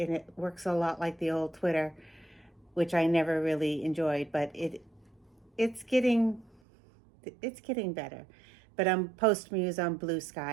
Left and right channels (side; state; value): left; drops out; at 6.6 s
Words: works a lot like the old Twitter, which I never really enjoyed, but it's getting better. But I'm PostMuse on Blue